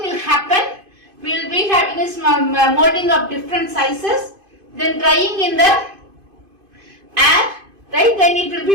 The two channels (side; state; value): left; late; 2.5 ms